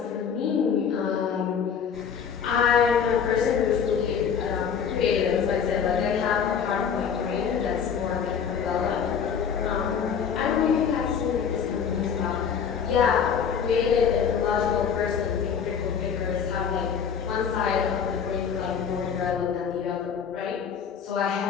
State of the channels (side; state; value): right; quieter; 7.2 dB